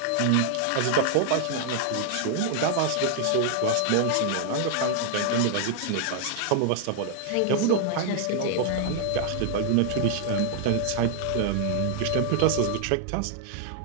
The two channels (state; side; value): different; both; correlation 0.00